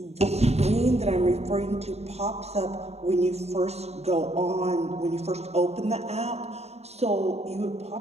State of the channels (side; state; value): left; late; 0.31 ms